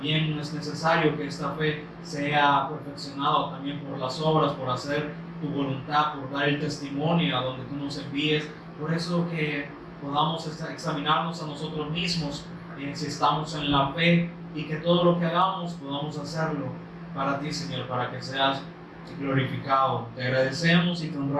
es necesario que esta fe sea perfeccionada también por las obras, por hacer tu voluntad, por dar el testimonio a donde tú nos envíes. Por eso que podamos examinarnos a nosotros mismos si estamos en la fe, y que todo lo que hagamos podamos hacerlo para ti, Señor, para que seas glorificado. Te agradecemos y te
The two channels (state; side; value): identical; both; correlation 1.00